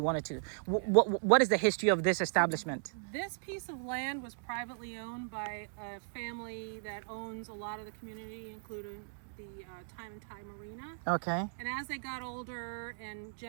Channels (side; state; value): left; silent; digital silence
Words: to. What is the history of this establishment? This piece of land was privately owned by a family that owns a lot of the community, including the Time and Tide Marina. Okay. And as they got older and